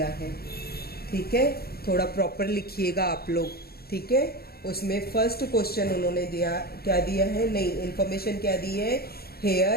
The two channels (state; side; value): late; right; 0.45 ms